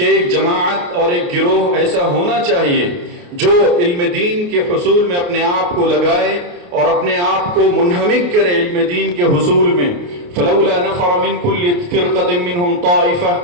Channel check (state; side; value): late; left; 28 ms